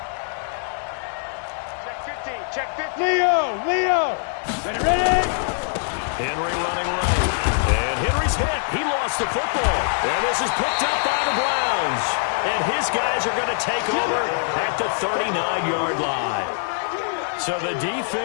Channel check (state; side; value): silent; right; digital silence